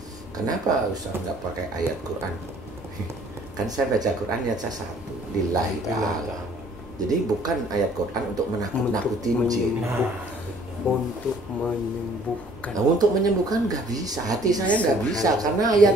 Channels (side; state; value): both; normal; correlation 0.57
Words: Kenapa Ustaz nggak pakai ayat Quran? Kan saya baca Quran ayat 1, lillahi ta'ala. Jadi bukan ayat Quran untuk menakut-nakutin jin. Untuk menyembuhkan. Nah, untuk menyembuhkan nggak bisa. Hati saya nggak bisa karena